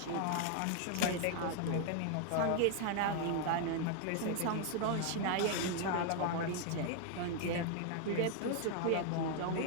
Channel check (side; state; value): both; different; correlation 0.00